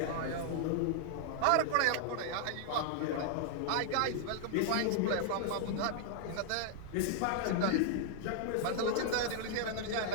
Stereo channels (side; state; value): both; different; correlation -0.01